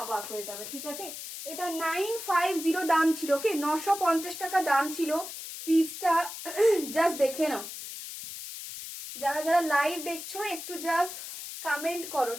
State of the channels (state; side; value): noise; left; hiss, 9 dB below the sound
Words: অবাক হয়ে যাবে, ঠিক আছে? এটা 950 দাম ছিল, ওকে? 950 টাকা দাম ছিল পিসটা। জাস্ট দেখে নাও, যারা যারা লাইভ দেখছো একটু জাস্ট কমেন্ট করো,